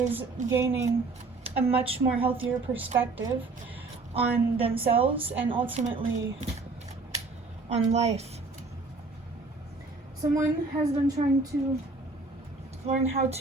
gaining a much more healthier perspective on themselves and ultimately on life. Someone has been trying to learn how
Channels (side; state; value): left; quieter; 3.7 dB